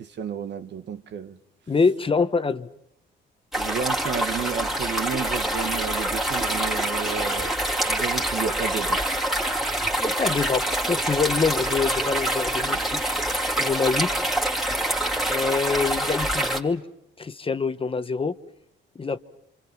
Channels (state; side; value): normal; both; correlation 0.62